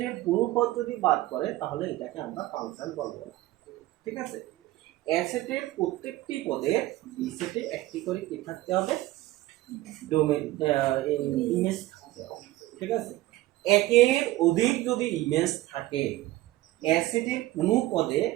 কোনো পদ যদি বাদ করে তাহলে এটাকে আমরা ফাংশন বলবো না। ঠিক আছে, এ সেটের প্রত্যেকটি পদে বি সেটে একটি করে কি থাকতে হবে, ডোমেন ইমেজ থাকতে হবে। ঠিক আছে, একের অধিক যদি ইমেজ থাকে, এ সেটের কোনো পদে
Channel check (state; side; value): quieter; left; 17.1 dB